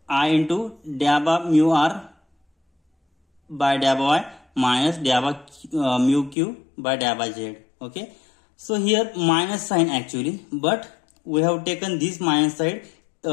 dA by mu r by dA by y minus dA by mu q by dA by z. Okay. So here minus sign actually, but we have taken this minus side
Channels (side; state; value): right; drops out; at 6.4 s